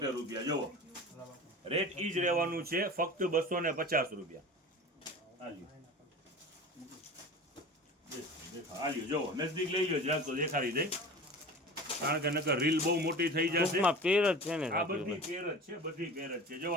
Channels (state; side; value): normal; both; correlation 0.36